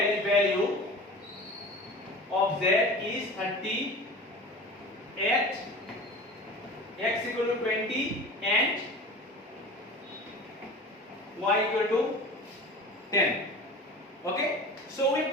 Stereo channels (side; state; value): both; normal; correlation 0.36